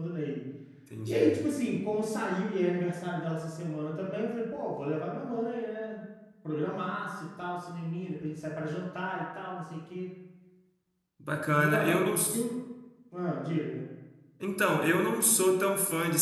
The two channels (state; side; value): identical; both; correlation 1.00